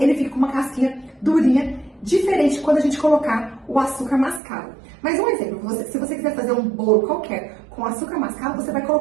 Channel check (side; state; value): left; drops out; at 4.4 s